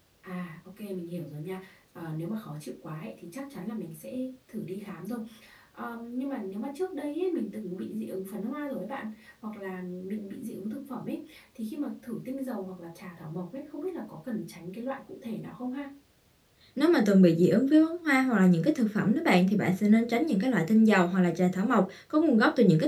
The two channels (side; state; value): both; identical; correlation 1.00